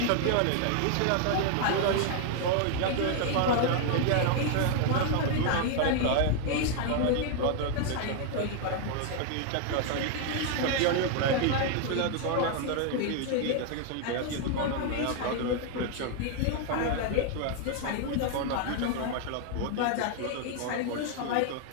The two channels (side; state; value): both; different; correlation 0.00